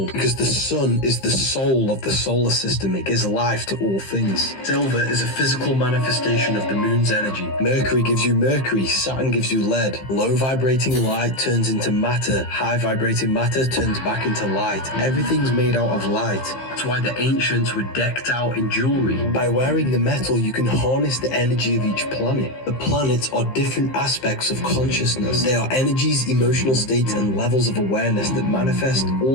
because the sun is the soul of the solar system. It gives life to all things. Silver is a physical manifestation of the moon's energy. Mercury gives you mercury, Saturn gives you lead. Low vibrating light turns into matter, high vibrating matter turns back into light. Everything's made out of light. That's why the ancients were decked out in jewelry. By wearing the metal, you can harness the energy of each planet. The planets are different aspects of consciousness. They are energies, emotional states, and levels of awareness that manifest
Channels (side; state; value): right; late; 15 ms